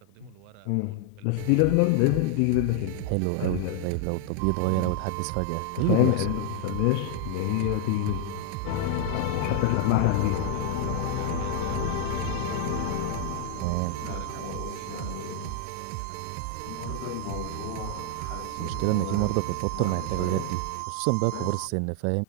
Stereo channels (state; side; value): different; both; correlation 0.00